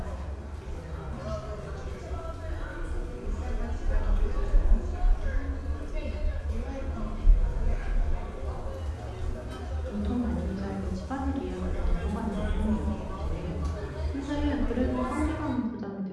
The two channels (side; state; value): both; identical; correlation 1.00